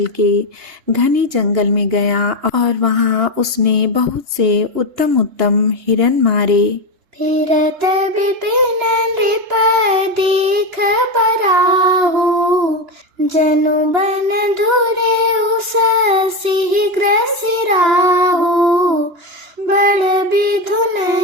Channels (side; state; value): left; late; 2.9 ms